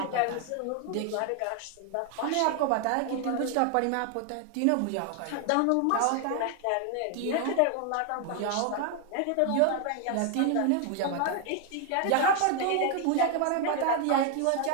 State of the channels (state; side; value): different; both; correlation 0.00